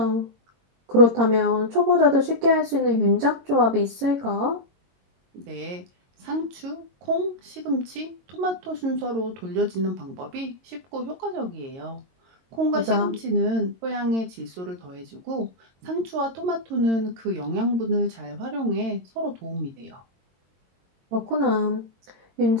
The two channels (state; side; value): late; left; 22 ms